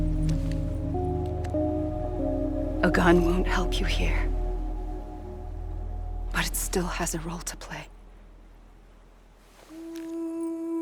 A gun won't help you here. But it still has a role to play.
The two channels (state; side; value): identical; both; correlation 1.00